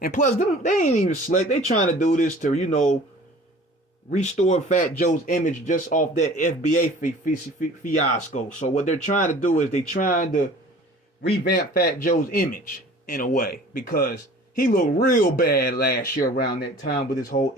And plus, they ain't even slick. They trying to do this to, restore Fat Joe's image just off that FBA fiasco. So what they're trying to do is they trying to revamp Fat Joe's image in a way, because he looked real bad last year around that time with his whole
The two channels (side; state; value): both; normal; correlation 0.46